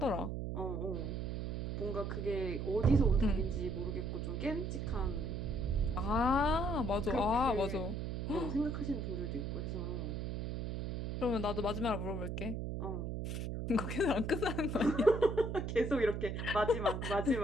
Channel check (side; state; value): right; noise; hum, 3 dB below the sound